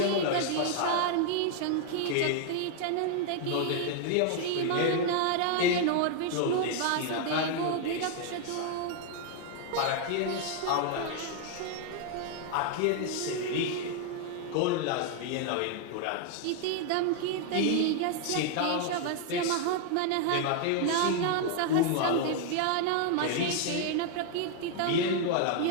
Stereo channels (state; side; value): different; both; correlation 0.00